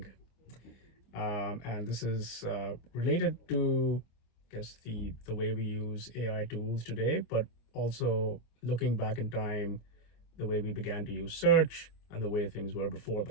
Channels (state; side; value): late; right; 25 ms